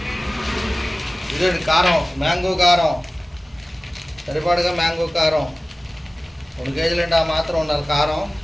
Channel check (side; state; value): both; normal; correlation 0.97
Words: ఇదండి కారం, మ్యాంగో కారం సరిపడగా. మ్యాంగో కారం 2 కేజీలు అంటే ఆ మాత్రం ఉండాలి కారం.